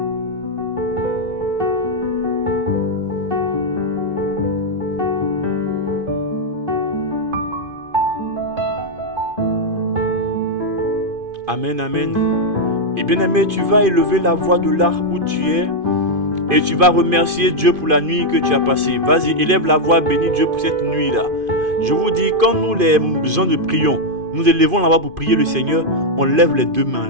Amen, amen. Et bien aimé, tu vas élever la voix de là où tu es et tu vas remercier Dieu pour la nuit que tu as passée. Vas-y, élève la voix, bénis Dieu pour cette nuit-là. Je vous dis, quand nous les gens de prions, nous élevons la voix pour prier le Seigneur, on lève les 2 mains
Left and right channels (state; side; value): late; left; 2.5 ms